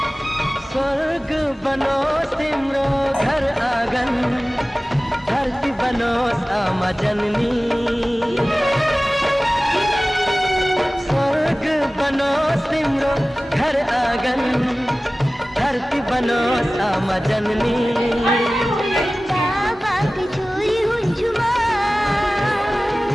आमा जननी स्वर्ग बनोस् तिम्रो घर आँगन धरती बनोस् आमा जननी बाबाको छोरी हुन्छु म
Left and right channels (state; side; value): normal; both; correlation 0.97